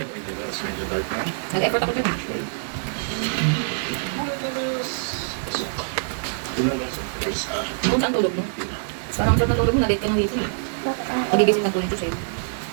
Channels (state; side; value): silent; left; 56 dB below the other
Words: Nag-effort ako dyan. Kung saan tulog mo? Parang ang sarap ng tulog mo, na-late ka ng gising. Magigising lang po yung Diyos eh.